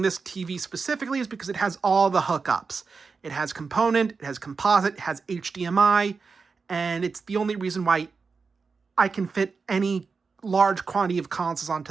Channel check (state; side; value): quieter; left; 4.8 dB